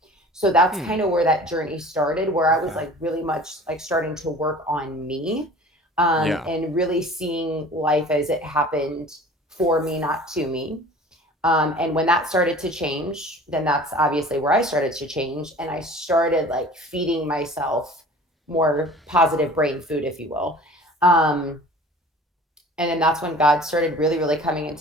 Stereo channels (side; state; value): both; normal; correlation 0.44